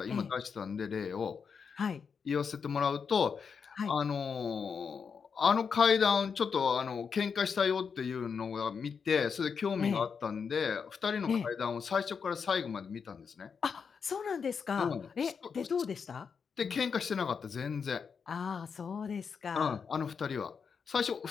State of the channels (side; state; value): right; quieter; 6.1 dB